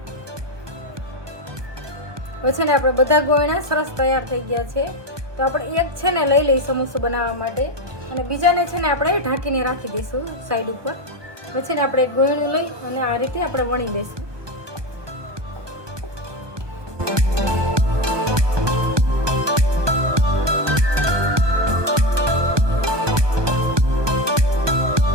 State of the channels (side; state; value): left; late; 1.2 ms